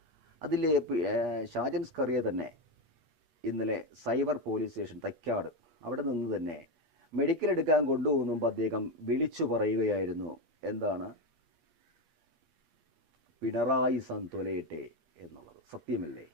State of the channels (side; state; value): left; late; 8.4 ms